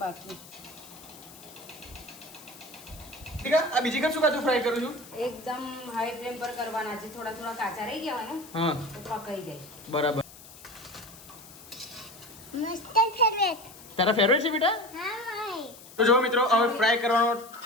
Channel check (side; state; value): left; noise; hiss, 19 dB below the sound